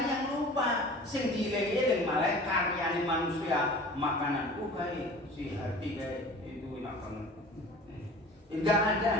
yang lupa sing dieling-eling malah karyane manusia makanan kae si hati kae itu enak banget. Enggak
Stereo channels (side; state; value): both; normal; correlation 0.42